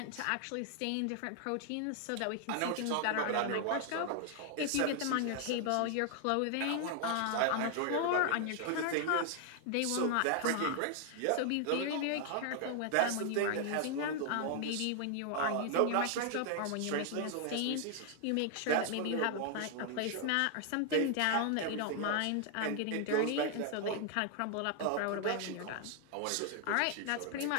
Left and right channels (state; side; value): different; both; correlation 0.00